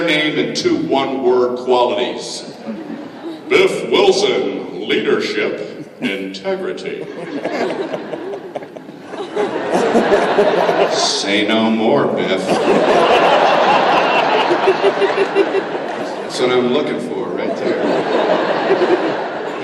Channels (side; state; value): both; identical; correlation 1.00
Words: name and 2 one-word qualities. Biff Wilson, leadership, integrity. Say no more, Biff. That's what I'm looking for right there.